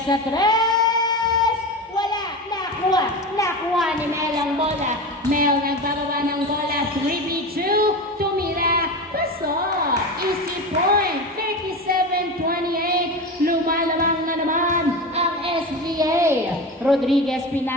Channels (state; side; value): normal; both; correlation 0.25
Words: sa 3. Wala, nakuha ni Mel ang bola. Mel nagbababa ng bola, 3v2, tumira, pasok. Easy point, 37-28, lumalamang na naman ang SBA. Rodriguez